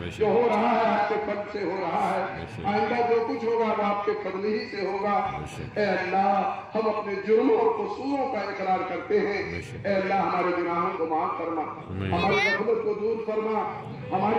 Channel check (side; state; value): both; identical; correlation 1.00